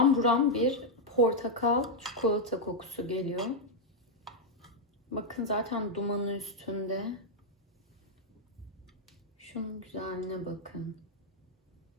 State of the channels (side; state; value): both; normal; correlation -0.02